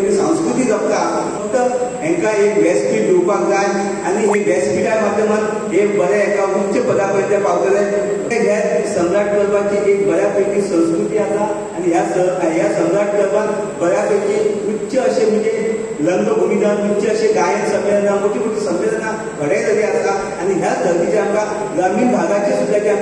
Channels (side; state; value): both; identical; correlation 1.00